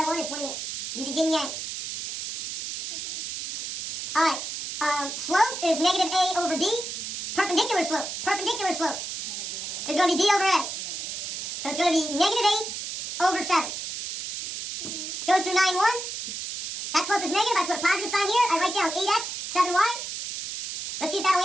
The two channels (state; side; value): noise; right; hiss, 6 dB below the sound